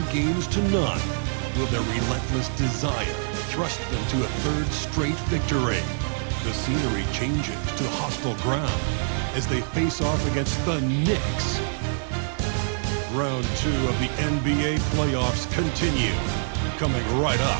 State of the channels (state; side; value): silent; left; digital silence